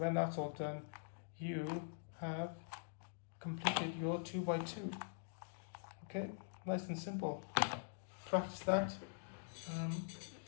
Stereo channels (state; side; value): silent; right; digital silence